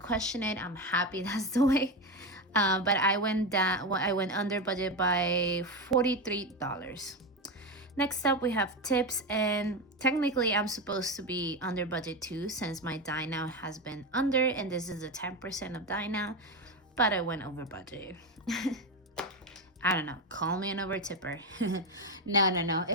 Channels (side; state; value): both; normal; correlation 0.15